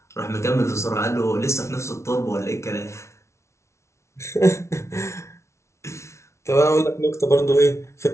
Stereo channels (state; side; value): late; right; 0.13 ms